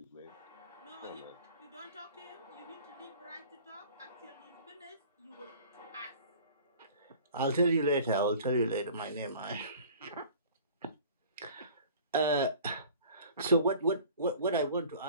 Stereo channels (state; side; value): inverted; both; correlation -0.46